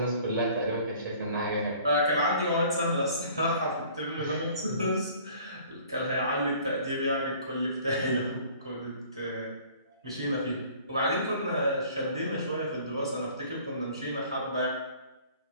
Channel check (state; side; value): inverted; both; correlation -0.52